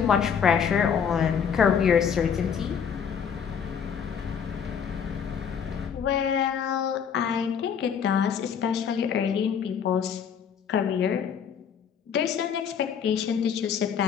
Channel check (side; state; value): right; quieter; 7.3 dB